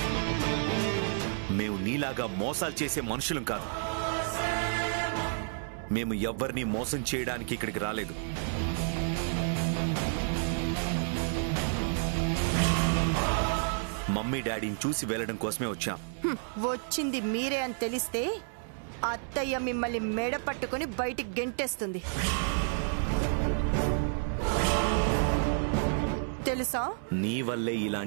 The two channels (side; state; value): left; silent; 57 dB below the other